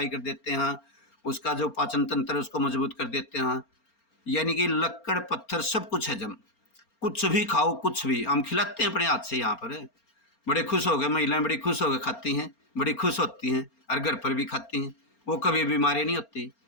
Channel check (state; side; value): late; right; 4.3 ms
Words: कर देते हैं, उसका जो पाचन तंत्र उसको मजबूत कर देते हैं। यानी कि लक्कड़ पत्थर सब कुछ हजम, कुछ भी खाओ, कुछ भी हम खिलाते हैं अपने हाथ से। यहाँ पर बड़े खुश हो गए, महिलाएं बड़ी खुश होकर खाती हैं, बड़ी खुश होती हैं, और घर पर भी खाती हैं। वो कभी बीमारी नहीं होती।